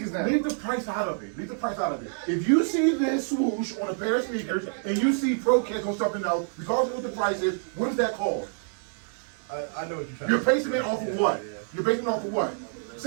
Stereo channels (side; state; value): left; silent; digital silence